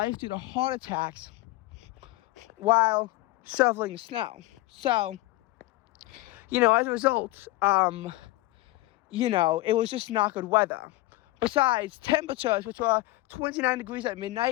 due to heart attacks while shoveling snow. So, as a result, it was just not good weather. Besides, temperatures, which were 29 degrees at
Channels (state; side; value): quieter; right; 19.0 dB